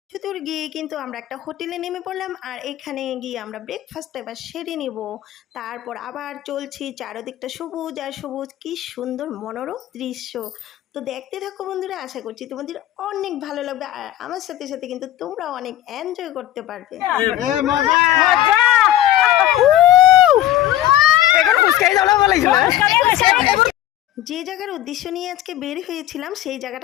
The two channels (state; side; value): quieter; right; 13.4 dB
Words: দূর গিয়ে কিন্তু আমরা একটা হোটেলে নেমে পড়লাম, আর এখানে গিয়ে আমরা ব্রেকফাস্টটা এবার সেরে নেব। তারপর আবার চলছি, চারদিকটা সবুজ আর সবুজ, কি সুন্দর মনোরম দৃশ্য। তো দেখতে থাকো বন্ধুরা, আশা করছি তোমাদের অনেক ভালো লাগবে, আর আমার সাথে সাথে কিন্তু তোমরাও অনেক এনজয় করতে পারবে। যে জায়গার উদ্দেশ্য নিয়ে আজকে বের হয়েছিলাম সেই